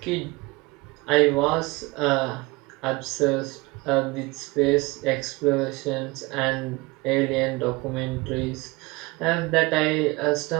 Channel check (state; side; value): quieter; left; 23.9 dB